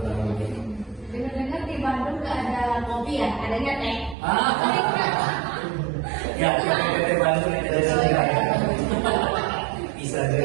Dengar-dengar di Bandung nggak ada kopi ya, adanya teh. Ya, PT Bandung ada bisa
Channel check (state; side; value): drops out; left; at 4.2 s